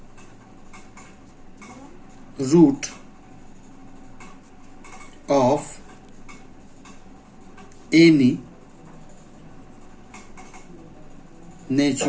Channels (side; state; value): both; identical; correlation 1.00